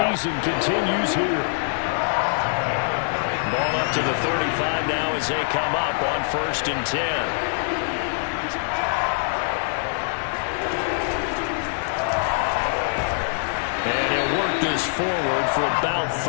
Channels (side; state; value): right; silent; digital silence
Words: continues here. Ball up to the 35 now as they come up on 1st and 10. And he'll work this forward for about